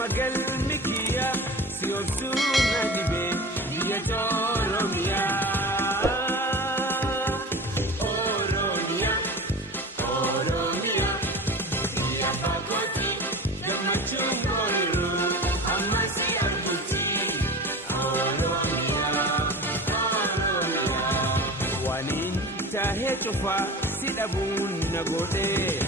galmi kiyya si obsuu na dhibee biyya Oromiyaa. Tahee cufaa si dhabuun na godhee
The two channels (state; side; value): normal; both; correlation 0.33